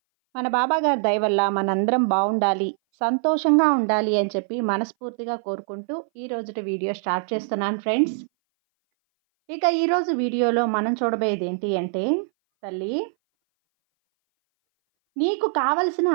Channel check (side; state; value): left; silent; 59 dB below the other